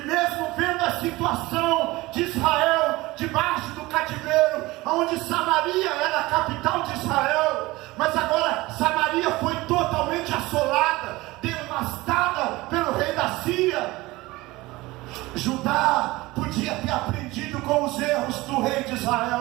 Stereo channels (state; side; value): quieter; left; 20.3 dB